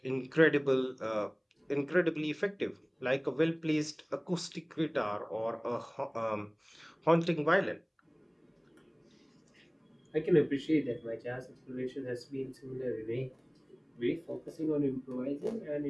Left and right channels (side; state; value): both; identical; correlation 1.00